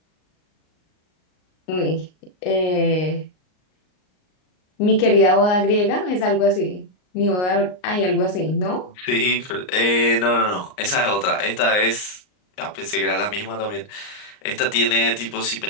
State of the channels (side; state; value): right; late; 38 ms